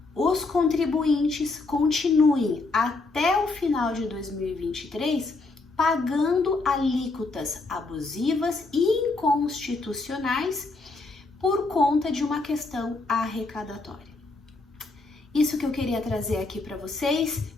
os contribuintes continuem até o final de 2023 pagando alíquotas abusivas e inconstitucionais por conta de uma questão arrecadatória. Isso que eu queria trazer aqui para vocês.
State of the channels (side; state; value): right; quieter; 3.5 dB